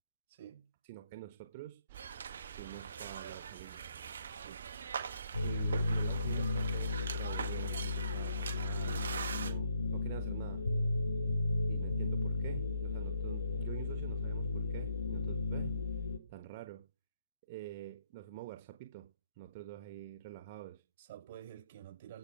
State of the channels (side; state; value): both; inverted; correlation -0.73